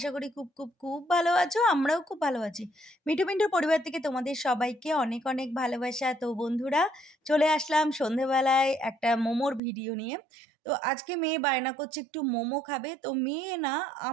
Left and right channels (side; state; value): left; drops out; at 9.6 s